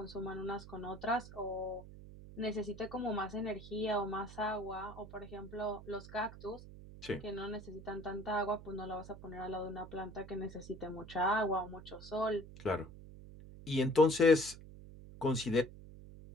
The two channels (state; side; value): noise; right; hum, 15 dB below the sound